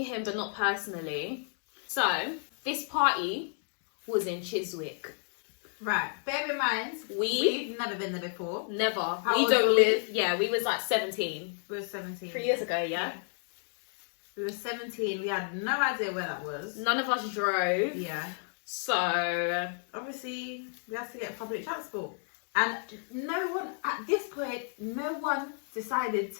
him, but not personally. So this party was in Chiswick. Right. Bear in mind, we've never been there before. Never. How we old don't were live. Yeah, we was like 17. We were 17. 3 years ago, yeah. We were 17. We had no idea where that was. None of us drove. Yeah. So obviously we had to get public transport, and no one at this point, no one decided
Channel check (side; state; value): right; silent; 57 dB below the other